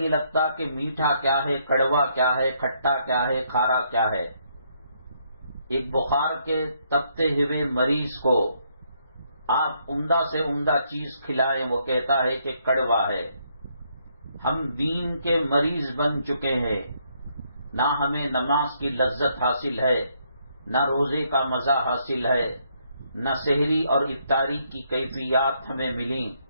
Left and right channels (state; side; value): inverted; both; correlation -0.72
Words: لگتا کہ میٹھا کیا ہے، کڑوا کیا ہے، کھٹا کیا ہے، کھارا کیا ہے۔ ایک بخار کے تپتے ہوئے مریض کو آپ عمدہ سے عمدہ چیز کھلائیں، وہ کہتا ہے کہ کڑوا ہے۔ ہم دین کے مریض بن چکے ہیں، نہ ہمیں نماز کی لذت حاصل ہے، نہ روزے کا مزہ حاصل ہے، نہ سحری اور افطاری کی کیفیات ہمیں ملیں،